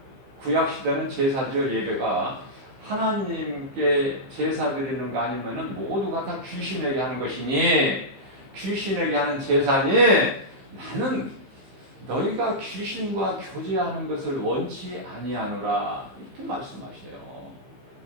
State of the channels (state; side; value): late; left; 15 ms